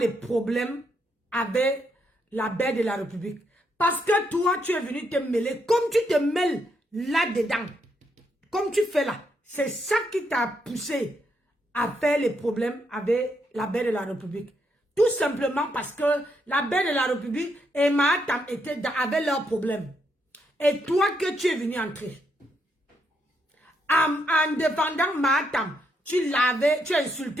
problèmes avec la belle de la République. Parce que toi, tu es venu te mêler comme tu te mêles là-dedans. Comme tu fais là. C'est ça qui t'a poussé à faire les problèmes avec la belle de la République. Tout simplement parce que la belle de la République et Mahatam avaient leurs problèmes. Et toi que tu es venu entrer. En défendant Mahatam, tu as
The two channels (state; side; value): normal; both; correlation 0.78